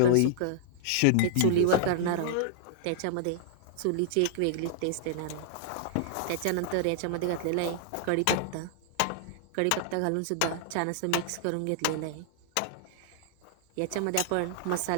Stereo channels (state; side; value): different; both; correlation -0.01